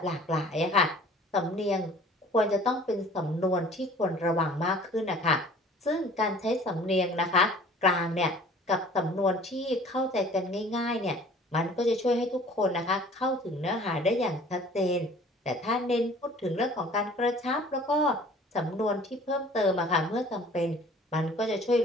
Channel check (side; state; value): both; normal; correlation 0.50